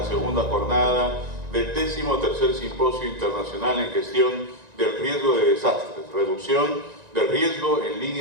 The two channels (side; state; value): left; late; 1.9 ms